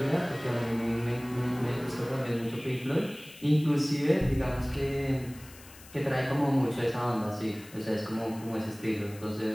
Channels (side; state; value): left; noise; hiss, 20 dB below the sound